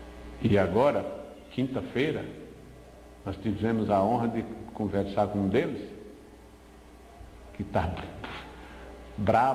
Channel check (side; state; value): both; identical; correlation 1.00